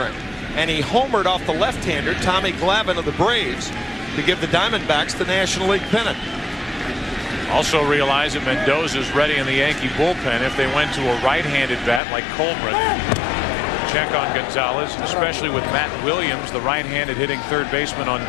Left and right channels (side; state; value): right; drops out; at 12.0 s